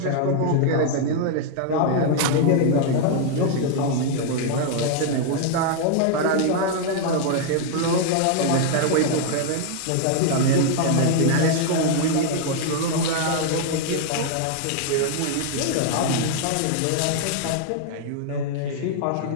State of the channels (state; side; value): different; both; correlation 0.00